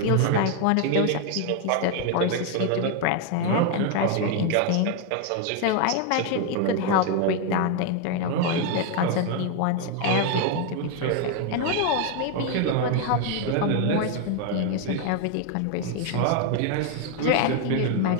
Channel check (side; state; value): both; different; correlation 0.01